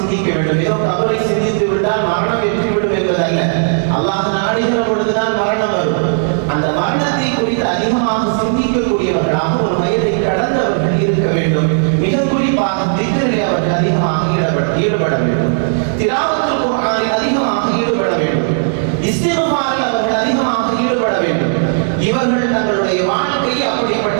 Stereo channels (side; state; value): left; silent; digital silence